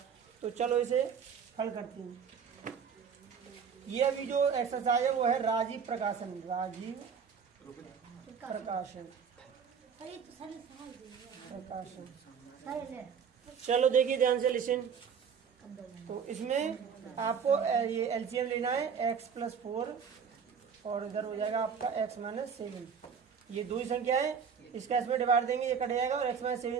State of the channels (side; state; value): left; quieter; 6.7 dB